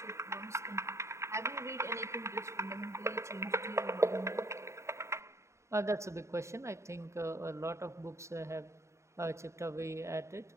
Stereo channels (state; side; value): late; left; 0.14 ms